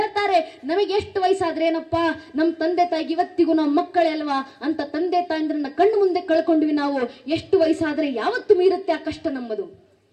ನಮಗೆ ಎಷ್ಟು ವಯಸ್ಸಾದ್ರೆ ಏನಪ್ಪಾ, ನಮ್ಮ ತಂದೆ ತಾಯಿಗೆ ಇವತ್ತಿಗೂ ನಾವು ಮಕ್ಕಳೇ ಅಲ್ವಾ ಅಂತ ತಂದೆ ತಾಯಿಂದ್ರನ್ನ ಕಣ್ಣು ಮುಂದೆ ಕಳ್ಕೊಂಡ್ವಿ ನಾವು. ಎಷ್ಟು ವಯಸ್ಸಾದ್ರೆ ಯಾವತ್ತು ಮೀರುತ್ತೆ ಆ ಕಷ್ಟ ನಮ್ಮದು.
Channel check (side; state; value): both; identical; correlation 1.00